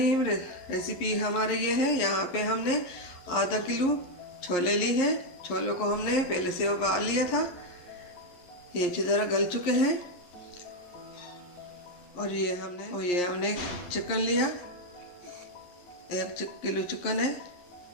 रेसिपी हमारे ये है। यहाँ पे हमने आधा किलो छोले ली है। छोलों को हमने पहले से उबाल लिया था, ये अच्छी तरह गल चुके हैं। और ये हमने चिकन लिया, 1 किलो चिकन है।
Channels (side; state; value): right; late; 11 ms